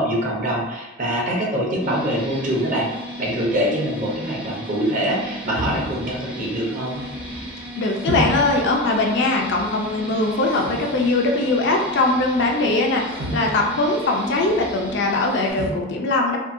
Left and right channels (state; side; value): normal; both; correlation 0.20